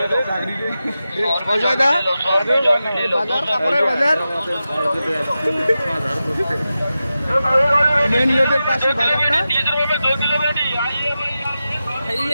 অজয় দা বাজার কাপড়ের বাজার মেন রোডের পাশে বাজারটা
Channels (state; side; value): inverted; both; correlation -0.92